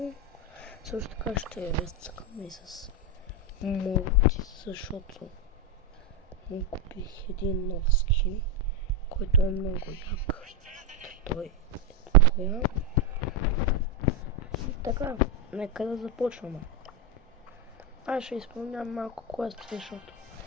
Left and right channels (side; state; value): both; normal; correlation 0.07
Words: Също така ще разцъкаме и с мулти, защото му купих един нов скин, който е много як. Той е такова. И така, нека да започваме. Аз ще изпълнявам малко квести, защото